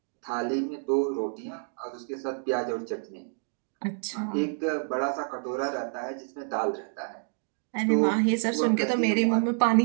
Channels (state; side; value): silent; left; 57 dB below the other